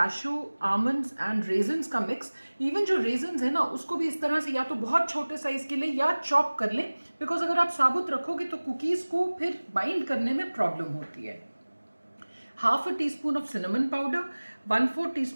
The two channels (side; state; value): both; inverted; correlation -1.00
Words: almonds and raisins का मिक्स। इवन जो रेजन्स है ना, उसको भी इस तरह से या तो बहुत छोटे साइज के लिए या चॉप कर लें, बिकॉज अगर आप साबुत रखोगे तो कुकीज़ को फिर बाइंड करने में प्रॉब्लम होती है। 1/2 teaspoon of cinnamon powder, 1/4